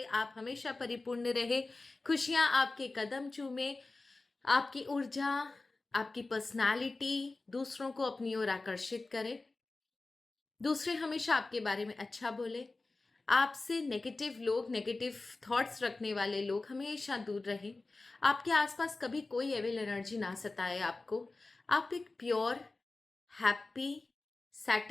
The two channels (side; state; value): right; quieter; 3.4 dB